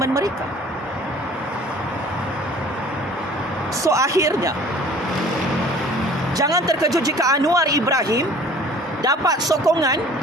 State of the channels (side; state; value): both; normal; correlation 0.49